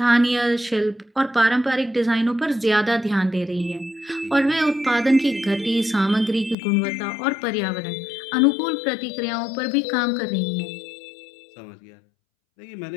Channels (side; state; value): right; drops out; at 6.6 s